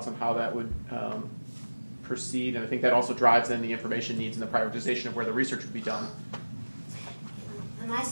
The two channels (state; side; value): inverted; both; correlation -1.00